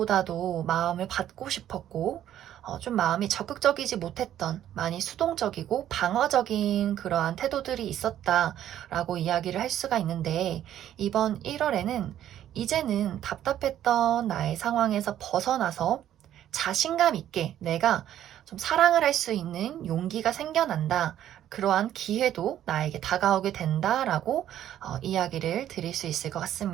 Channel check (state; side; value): quieter; left; 11.5 dB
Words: 마음을 받고 싶었고, 좀 마음이 적극적이지 못했던, 많이 수동적이고 방어적인 그러한 태도들이 있었다라고 이야기를 할 수가 있는데, 이번 1월에는 이제는 답답했던 나의 상황에서 벗어나서 자신감 있게 내가 좀 사랑을 할 수 있는 용기가 생겨난다. 그러한 기회도 나에게 다가오게 된다라고 이야기를 드릴 수 있을 것